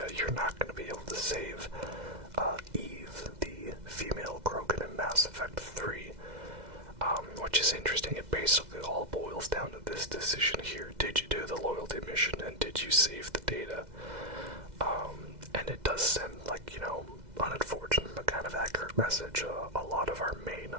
you're not going to be able to save Eve, the female Krogan in Mass Effect 3, which is interesting. It basically all boils down to this decision here. Did you do the loyalty mission, and did you save the data? And it does send, like, unfortunate but kind of accurate message. A lot of our main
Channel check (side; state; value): left; late; 2.0 ms